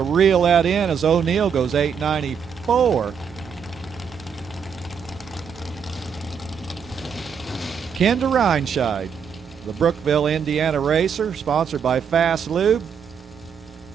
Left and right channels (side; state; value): left; quieter; 7.0 dB